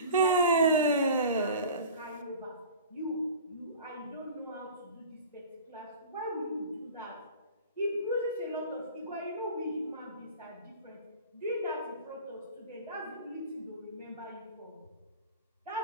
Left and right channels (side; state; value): both; inverted; correlation -0.39